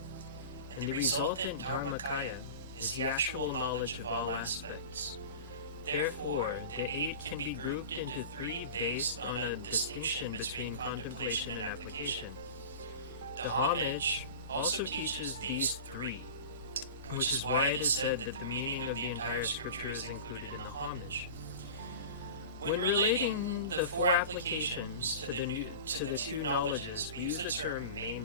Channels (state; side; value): inverted; both; correlation -0.33